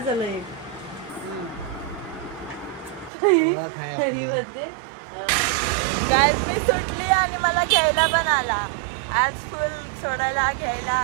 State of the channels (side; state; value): left; drops out; at 3.1 s